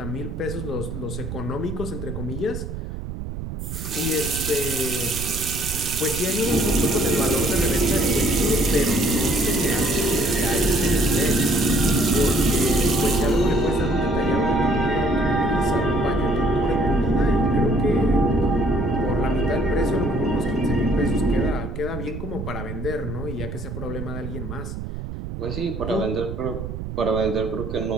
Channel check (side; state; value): right; noise; rumble, 7 dB below the sound